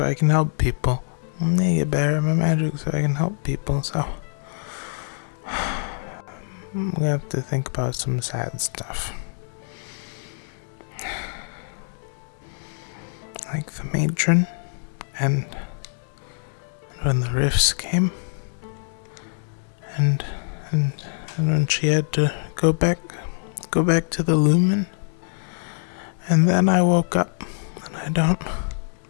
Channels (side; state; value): right; silent; 62 dB below the other